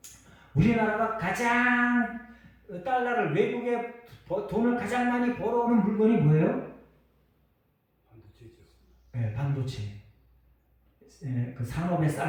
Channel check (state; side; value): identical; both; correlation 1.00